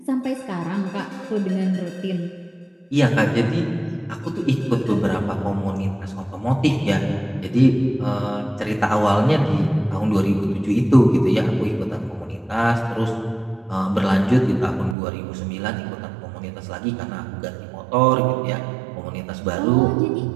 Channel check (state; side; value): drops out; left; at 15.0 s